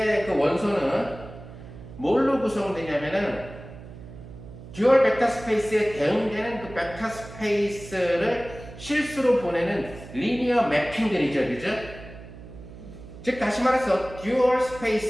그 원소는 뭘로 구성되냐면은, 듀얼 벡터 스페이스에 대응되는 그 벡터 스페이스를 실수로 보내는 리니어 매핑들이죠, 그죠? 즉 다시 말해서 듀얼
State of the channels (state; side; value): noise; right; hum, 15 dB below the sound